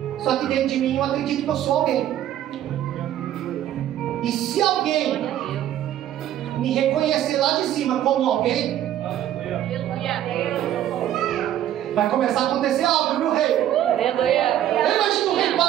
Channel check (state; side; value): quieter; left; 11.9 dB